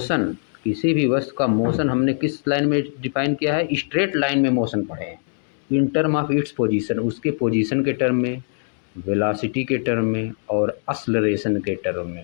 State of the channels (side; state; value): right; silent; 64 dB below the other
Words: किसी भी वस्तु का मोशन हमने किस लाइन में डिफाइन किया है? स्ट्रेट लाइन में मोशन पढ़े हैं। In term of its position, उसके पोजीशन के टर्म में, वेलोसिटी के टर्म में और एक्सेलरेशन के टर्म